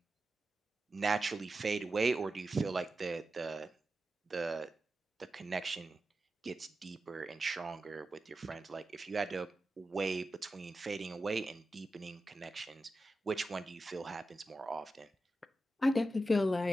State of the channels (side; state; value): both; normal; correlation 0.91